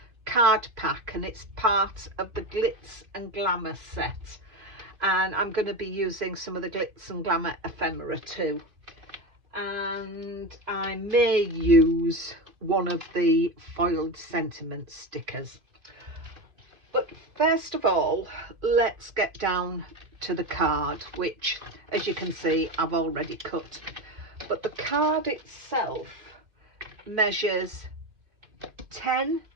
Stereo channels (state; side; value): late; left; 2.6 ms